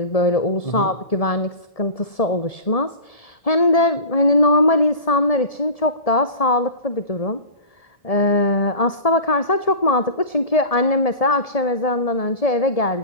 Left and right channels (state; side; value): late; right; 1.7 ms